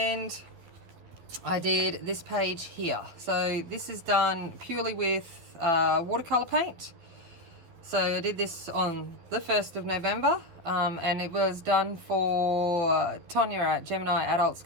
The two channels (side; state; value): left; late; 12 ms